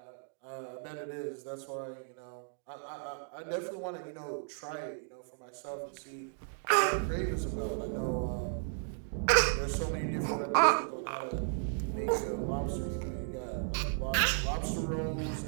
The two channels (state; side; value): silent; left; digital silence